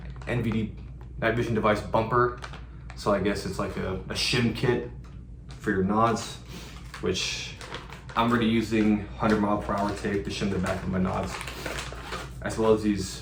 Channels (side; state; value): both; identical; correlation 1.00